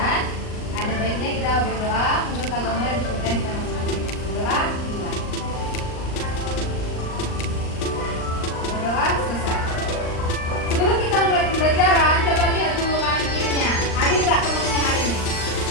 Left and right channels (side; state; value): right; late; 39 ms